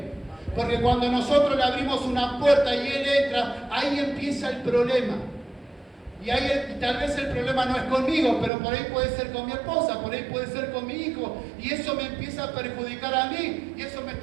Porque cuando nosotros le abrimos una puerta y él entra, ahí empieza el problema. Y ahí tal vez el problema no es conmigo, pero por ahí puede ser con mi esposa, por ahí puede ser con mi hijo. Y eso me empieza a perjudicar a mí. Y eso me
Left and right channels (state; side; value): drops out; left; at 8.5 s